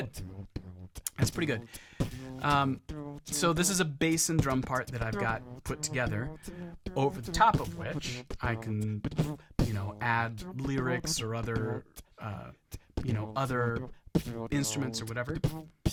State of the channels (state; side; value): identical; both; correlation 1.00